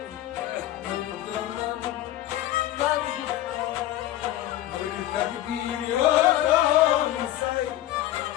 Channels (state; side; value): quieter; right; 13.8 dB